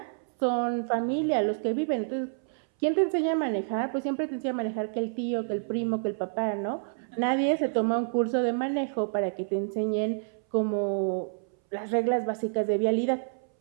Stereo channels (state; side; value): silent; left; 59 dB below the other